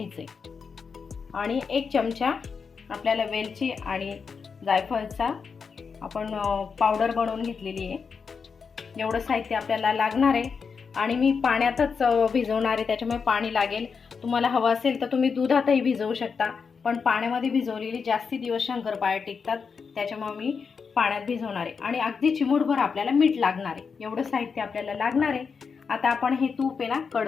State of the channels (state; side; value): quieter; right; 5.7 dB